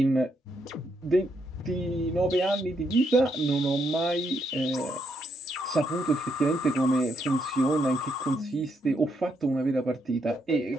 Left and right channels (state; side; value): normal; both; correlation 0.77